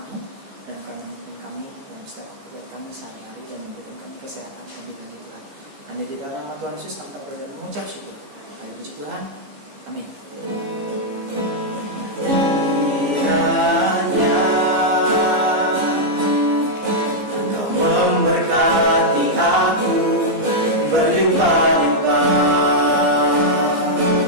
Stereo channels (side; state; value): left; late; 14 ms